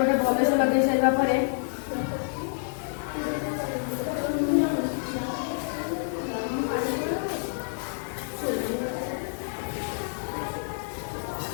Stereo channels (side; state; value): right; silent; digital silence